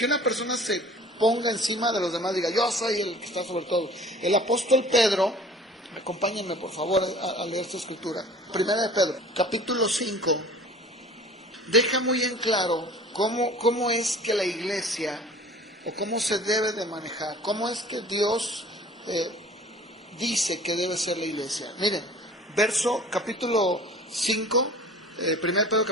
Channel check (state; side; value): normal; both; correlation 0.45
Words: una persona se ponga encima de los demás, diga, yo soy el que está sobre todo. El apóstol Pedro, acompáñenme por favor a leer esta escritura. Primera de Pedro, capítulo 5, deja muy en claro cómo es que la iglesia, o cómo se debe de manejar, cómo es que Dios dice que debe ser la iglesia. Miren, capítulo 5, 1 Pedro